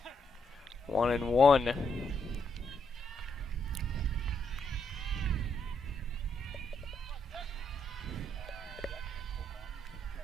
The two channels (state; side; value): normal; both; correlation 0.77